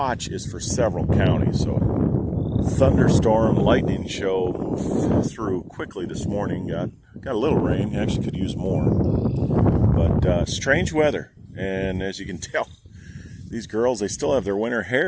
is for several counties, so thunderstorm, lightning show moved through quickly this morning. Got a little rain. Actually could use more, but strange weather. And as you can tell, these girls, they still have their winter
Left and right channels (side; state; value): both; identical; correlation 1.00